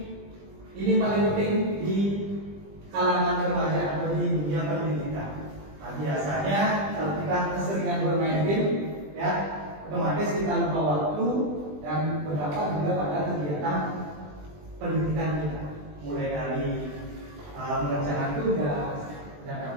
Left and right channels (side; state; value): left; late; 20 ms